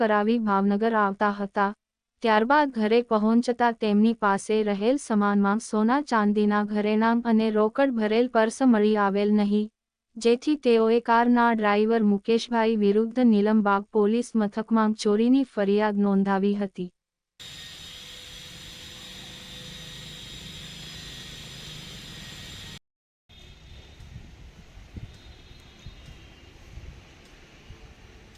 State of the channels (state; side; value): identical; both; correlation 1.00